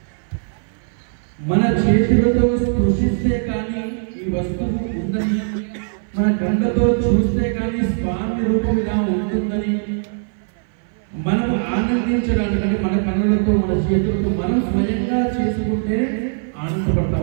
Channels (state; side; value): silent; left; 58 dB below the other